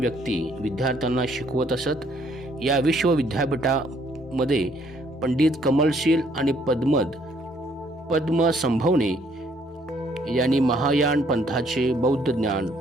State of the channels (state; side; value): normal; both; correlation 0.65